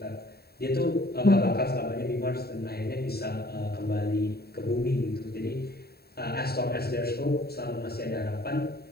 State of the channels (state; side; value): late; right; 0.46 ms